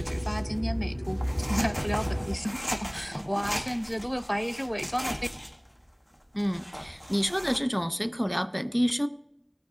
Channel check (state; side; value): identical; both; correlation 1.00